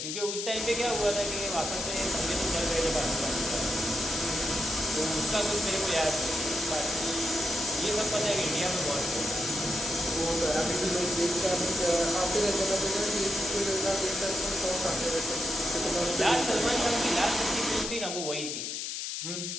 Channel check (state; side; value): noise; left; hiss, 4 dB below the sound